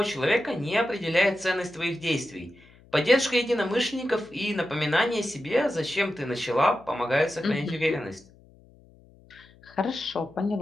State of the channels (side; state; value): left; noise; hum, 26 dB below the sound